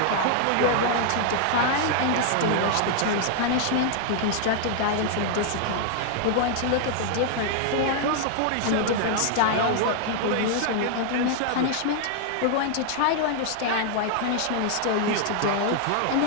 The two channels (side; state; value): both; different; correlation 0.00